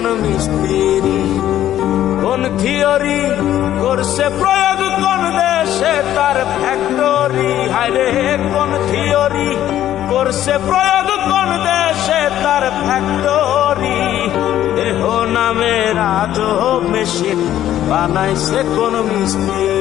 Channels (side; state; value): right; quieter; 12.2 dB